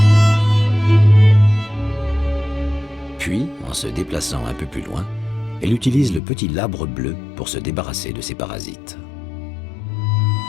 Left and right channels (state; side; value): drops out; right; at 6.2 s